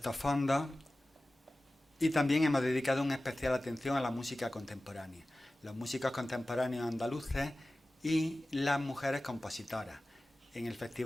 fondos, y también hemos dedicado una especial atención a la música contemporánea, los músicos contemporáneos andaluces y las mujeres compositoras. En el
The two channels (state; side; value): normal; both; correlation 0.96